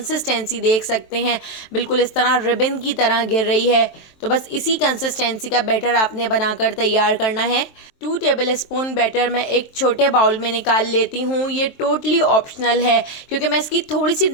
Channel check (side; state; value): right; late; 23 ms